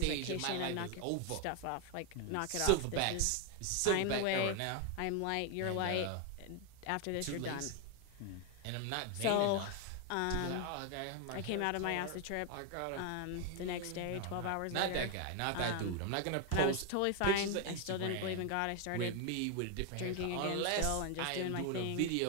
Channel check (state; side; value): different; both; correlation 0.01